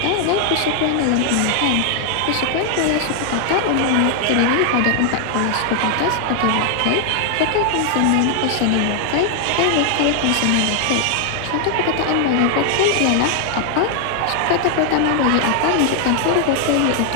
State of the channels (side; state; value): both; different; correlation 0.00